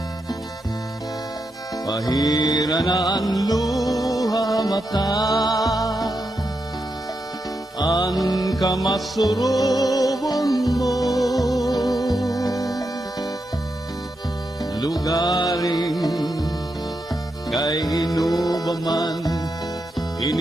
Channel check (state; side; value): normal; both; correlation 0.85